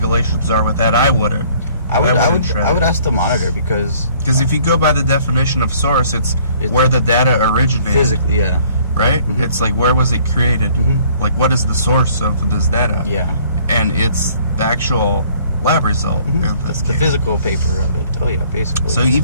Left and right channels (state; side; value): inverted; both; correlation -0.58